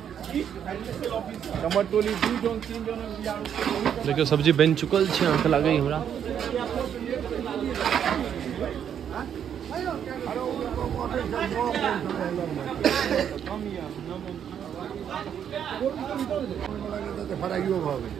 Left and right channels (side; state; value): left; quieter; 8.8 dB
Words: देखियो सब्जी बन चुकल छै, अहाँके लागै हमरा।